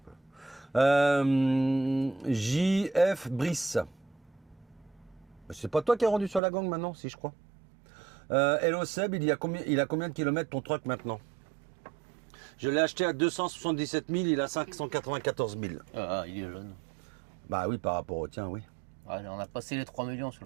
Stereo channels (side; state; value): left; drops out; at 6.4 s